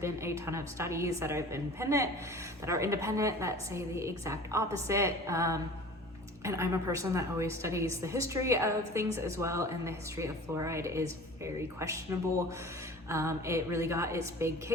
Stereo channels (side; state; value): both; normal; correlation 0.41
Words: a ton of studies that are independent that say the exact opposite. And I'm a person that always studies the history of things as well, and the history of fluoride is very questionable. It really got its big